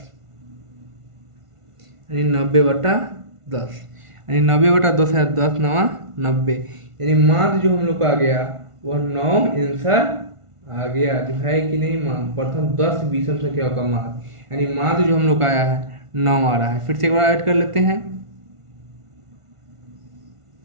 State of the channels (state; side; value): late; left; 1.5 ms